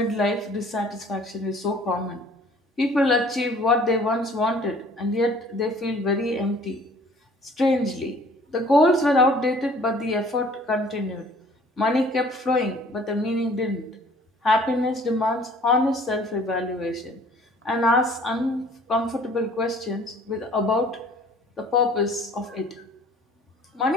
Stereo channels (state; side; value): normal; both; correlation 0.53